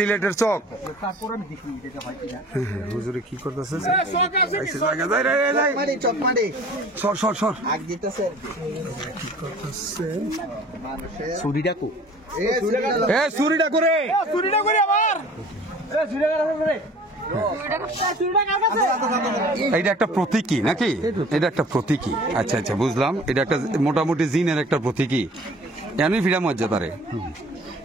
চক তারপর আমি দেখি এটা হয় কিনা হুজুরে কি করতেছে চক মারি সর আগ দিতেছে ছুরিটা কো এ চুরিটা করে এটা একটা প্রতীকী নাকি এটা একটা প্রতীকী আচ্ছা বুঝলাম এটা একটা মোটামুটি জিনের একটা প্রতীকী এমনি ফিরা মর্যাদারে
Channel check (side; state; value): both; normal; correlation 0.48